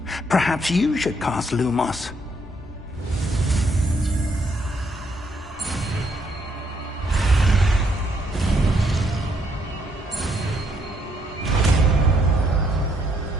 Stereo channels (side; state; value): both; normal; correlation 0.72